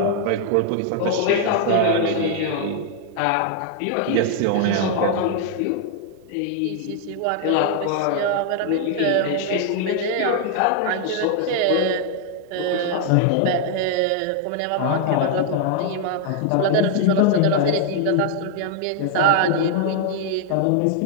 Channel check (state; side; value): different; both; correlation 0.00